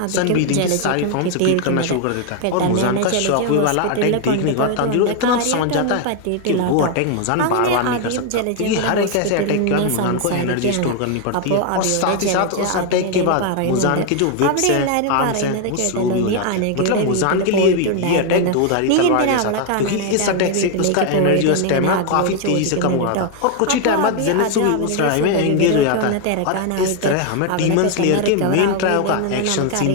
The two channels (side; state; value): both; different; correlation 0.01